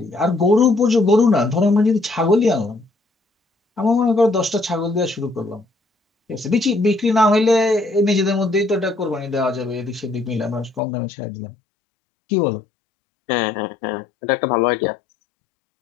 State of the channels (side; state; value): right; drops out; at 10.8 s